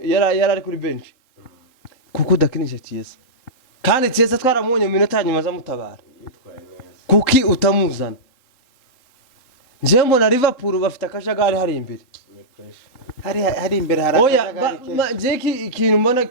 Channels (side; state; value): right; late; 3.9 ms